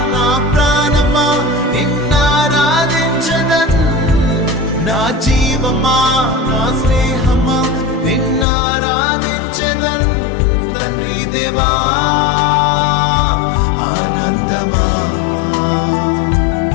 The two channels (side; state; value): right; drops out; at 8.5 s